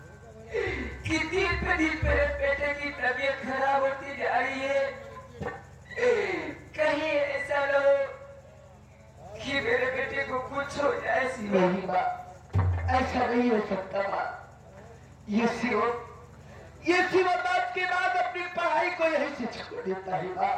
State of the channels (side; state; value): both; identical; correlation 1.00